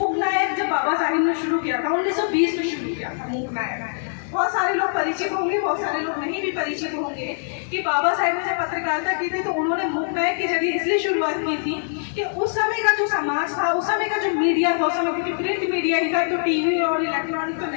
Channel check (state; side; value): silent; right; 63 dB below the other